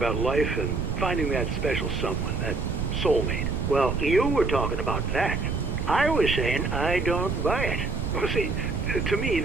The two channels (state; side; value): noise; right; rumble, 2 dB below the sound